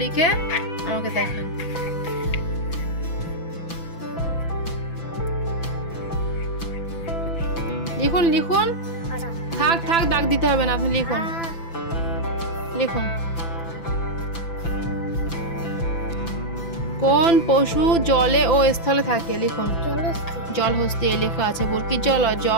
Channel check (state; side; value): late; right; 6.0 ms